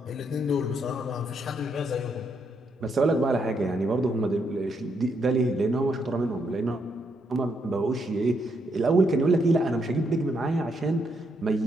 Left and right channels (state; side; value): normal; both; correlation 0.77